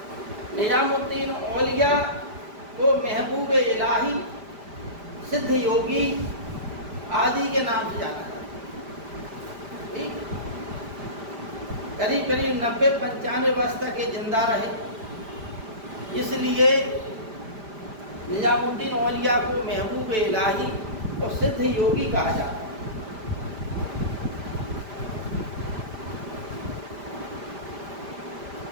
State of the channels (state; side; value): late; left; 5.0 ms